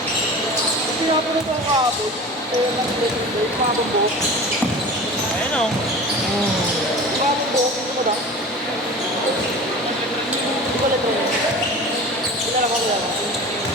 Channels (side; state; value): both; normal; correlation 0.36